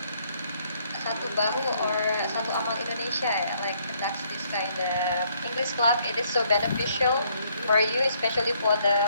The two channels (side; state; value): both; inverted; correlation -0.69